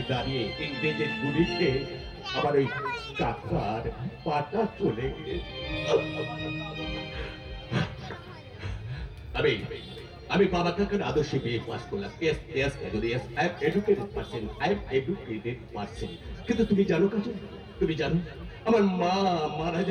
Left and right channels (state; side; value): identical; both; correlation 1.00